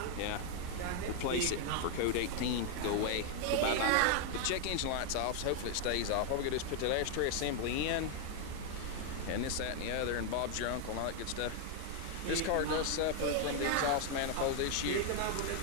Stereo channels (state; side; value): different; both; correlation 0.00